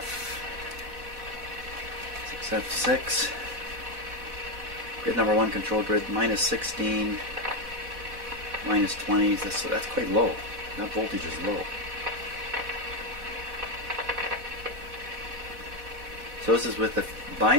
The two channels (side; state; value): left; late; 4.1 ms